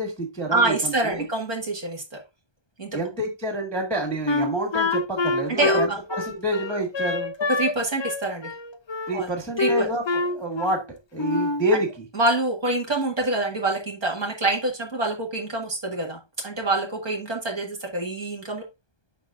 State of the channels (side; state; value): right; late; 1.2 ms